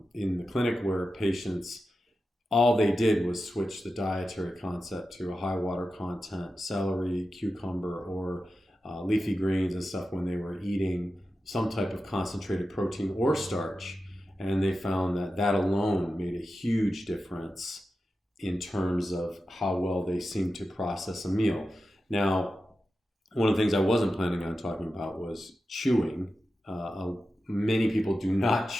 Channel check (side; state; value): both; normal; correlation 0.92